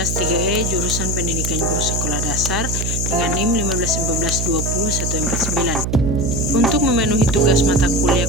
3E jurusan Pendidikan Guru Sekolah Dasar dengan NIM 1512149. Untuk memenuhi tugas mata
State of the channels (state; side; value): noise; right; hum, 2 dB below the sound